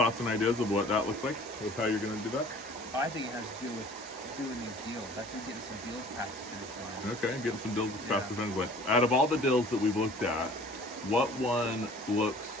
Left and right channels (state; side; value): normal; both; correlation 0.49